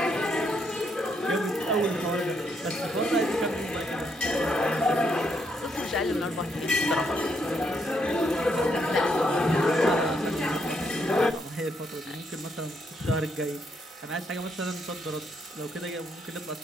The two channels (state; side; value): normal; both; correlation 0.76